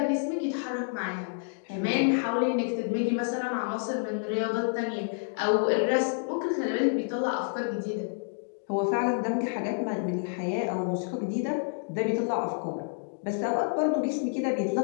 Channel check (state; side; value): silent; right; digital silence